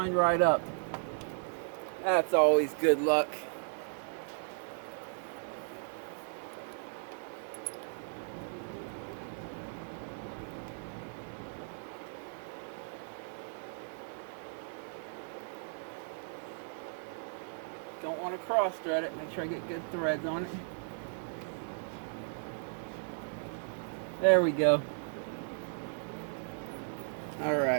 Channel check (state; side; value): silent; left; 54 dB below the other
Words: right up. That's always good luck. Don't want to cross thread it. Make sure I get good threads on it. There we go.